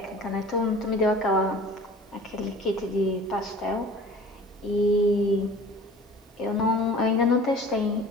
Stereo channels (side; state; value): both; normal; correlation 0.43